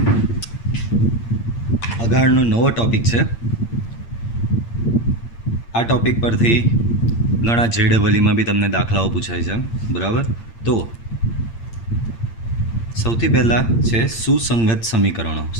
अगाड़नो नवो टॉपिक है। आ टॉपिक पर थी घणा JEE में भी तमने दाखलाओ पूछाय छे, बराबर। तो सौथी पहला है सुसंगत समीकरणों।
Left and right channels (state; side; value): late; right; 8.7 ms